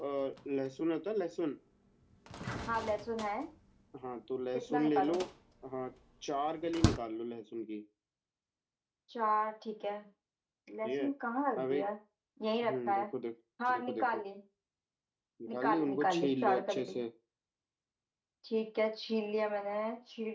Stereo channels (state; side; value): identical; both; correlation 1.00